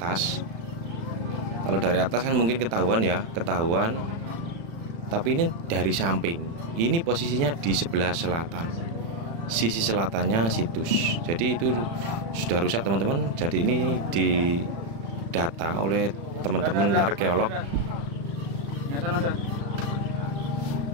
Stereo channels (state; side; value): late; left; 36 ms